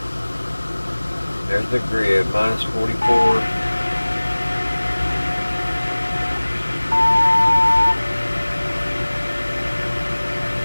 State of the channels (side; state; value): both; inverted; correlation -1.00